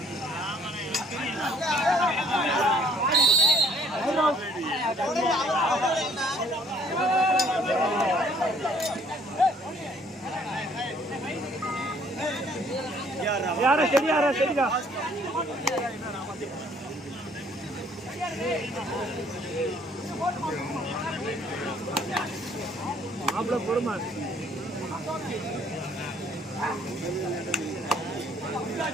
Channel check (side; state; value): both; normal; correlation 0.61